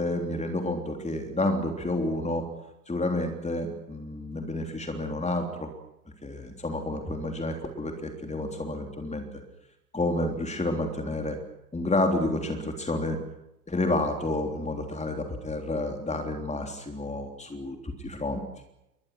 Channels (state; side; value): normal; both; correlation 0.50